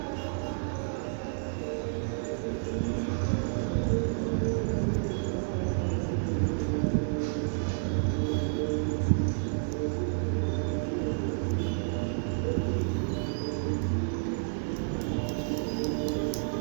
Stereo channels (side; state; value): left; silent; digital silence